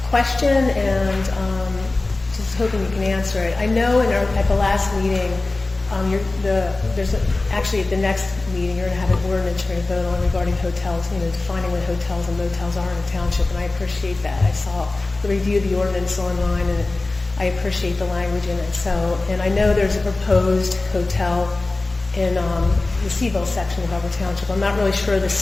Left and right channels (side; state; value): right; quieter; 3.2 dB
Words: question, and just hoping you can answer it. I know at the last meeting, actually at the next meeting, you're going to have an ordinance you're going to vote on regarding hotels, defining what hotels and motels are in the township, and I appreciate that. I saw the review of the ordinance online, and I appreciate the language in it. So, and I know there's a proposed hotel in the Seville section of Upper Township. I'm not really sure the